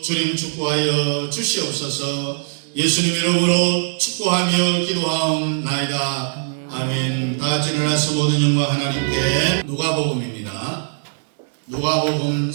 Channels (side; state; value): left; silent; digital silence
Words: 주님 축복하여 주시옵소서. 예수님 이름으로 축복하며 기도하옵나이다. 아멘. 다 같이 일어나서 모든 영광 하나님께. 누가복음입니다. 누가복음